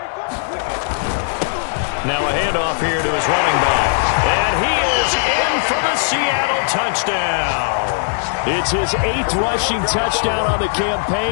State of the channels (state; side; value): silent; right; digital silence